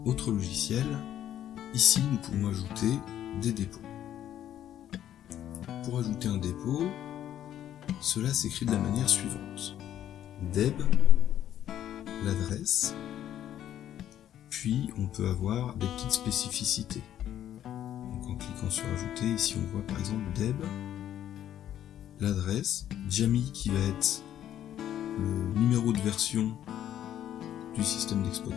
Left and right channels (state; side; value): quieter; right; 11.2 dB